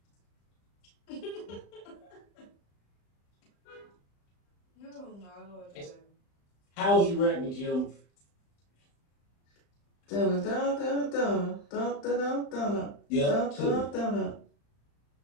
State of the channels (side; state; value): right; late; 35 ms